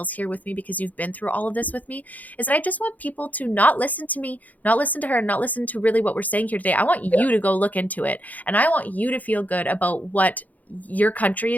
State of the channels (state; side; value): late; right; 0.078 ms